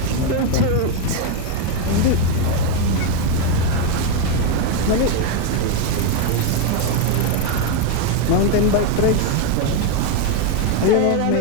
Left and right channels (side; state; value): both; different; correlation 0.02